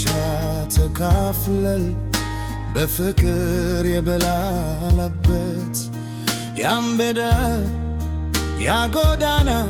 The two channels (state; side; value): identical; both; correlation 1.00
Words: ተካፍለል በፍቅር የበላንበት ያምበደ ያጎዳና